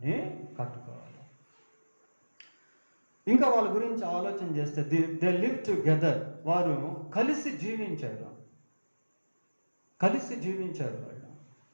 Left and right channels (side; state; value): both; inverted; correlation -1.00